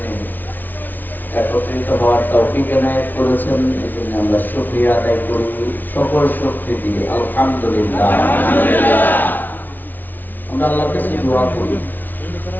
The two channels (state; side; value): late; right; 0.086 ms